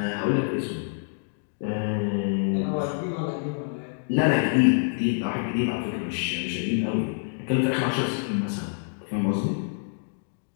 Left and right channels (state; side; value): silent; right; digital silence